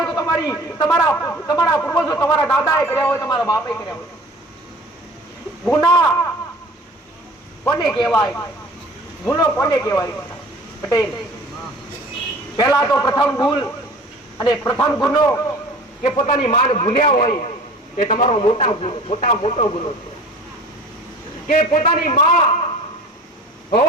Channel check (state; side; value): normal; both; correlation 0.44